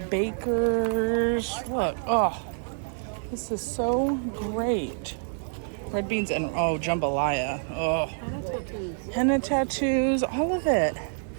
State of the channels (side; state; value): left; silent; digital silence